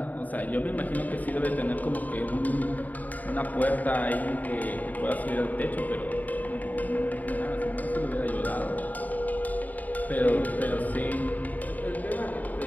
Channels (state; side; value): late; right; 0.078 ms